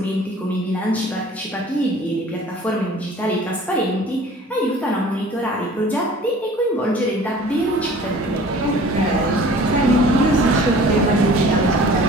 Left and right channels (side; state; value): both; normal; correlation 0.47